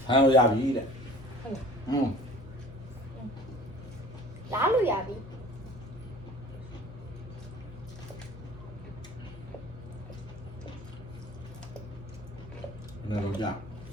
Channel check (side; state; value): both; normal; correlation 0.46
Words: ဖမ်းလို့ရပြီတဲ့ လာလို့ရပြီ ဘယ်လိုကြ